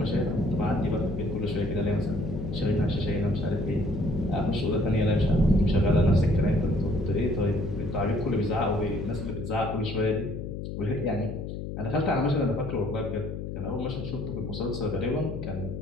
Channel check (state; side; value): noise; left; hum, 6 dB below the sound